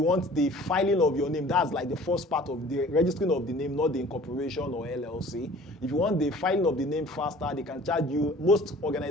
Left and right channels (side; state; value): both; normal; correlation 0.48